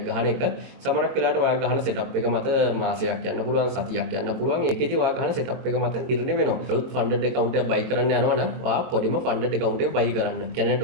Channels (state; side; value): late; left; 22 ms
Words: ගහන එක සමහරක් වෙලාවට ඔයා ගහන setup එක මත මාසයක් යන්න පුළුවන්, සතියක් යන්න පුළුවන්. ඒකෙදි ඔයා ගහන setup එක මත නිර්ණය වෙනවා. අලුත් funded account එකක් buy කරන්න යනවා නම් ඔයා පොඩිම funded account එක buy කරන්න. කියන්නේ